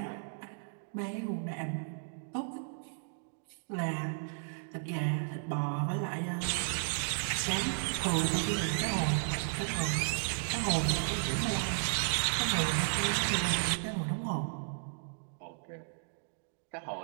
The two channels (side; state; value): left; silent; digital silence